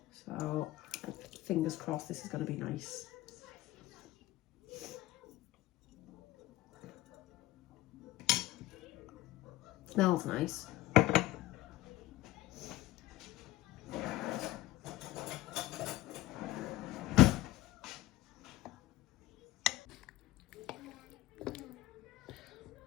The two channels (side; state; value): right; quieter; 16.8 dB